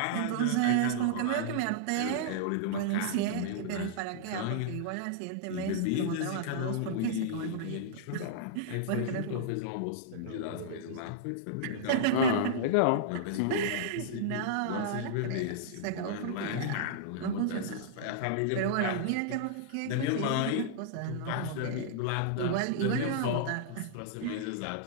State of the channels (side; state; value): both; different; correlation -0.02